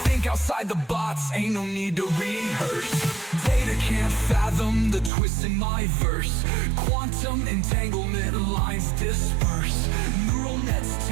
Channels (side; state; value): left; drops out; at 5.1 s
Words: Think outside the box, ain't no need to rehearse. Data can't fathom the twist in my verse. Quantum entanglement lines disperse. Neural nets